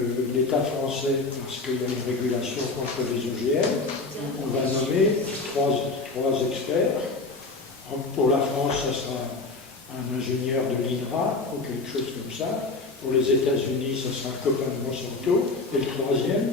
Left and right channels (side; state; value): right; quieter; 3.6 dB